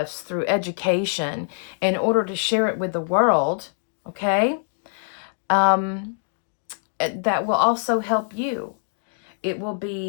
through education in order to share it with the world. Okay, um, that will also help you. It will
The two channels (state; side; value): silent; right; digital silence